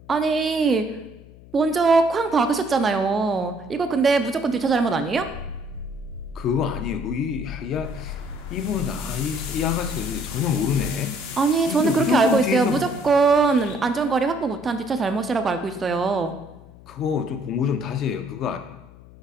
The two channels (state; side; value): noise; left; hum, 21 dB below the sound